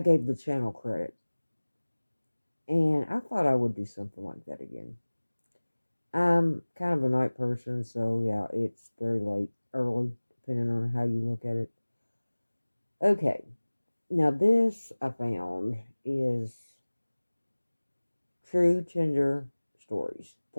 gave the channel credit, and I thought I would do something like that again. I'm kind of a night person, so yeah, it's very late, early, depending on how you look at it. Okay, Now, this I found is true Tinder stories.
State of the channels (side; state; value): both; inverted; correlation -1.00